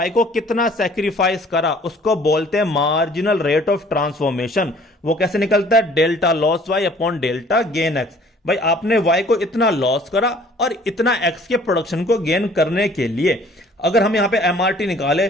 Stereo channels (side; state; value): both; normal; correlation 0.54